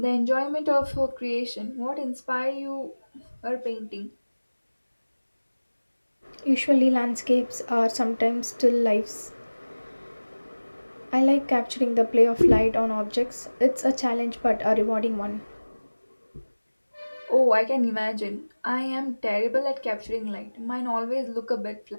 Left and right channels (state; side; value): inverted; both; correlation -1.00